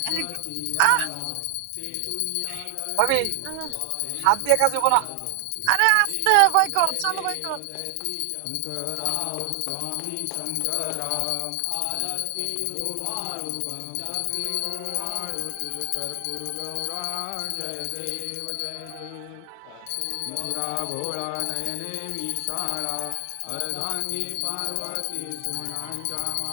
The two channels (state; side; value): different; both; correlation 0.00